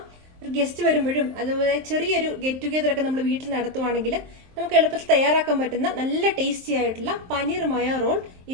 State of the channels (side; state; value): left; late; 23 ms